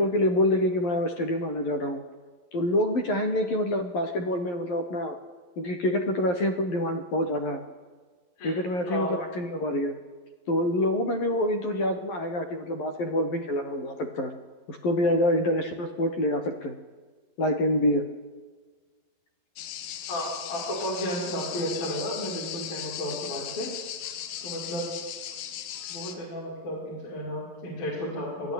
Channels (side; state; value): right; late; 12 ms